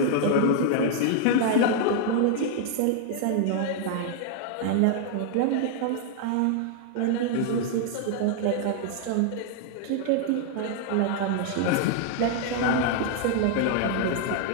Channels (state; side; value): different; both; correlation 0.00